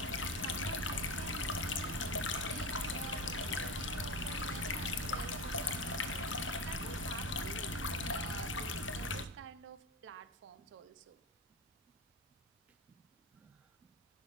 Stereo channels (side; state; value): both; normal; correlation 0.23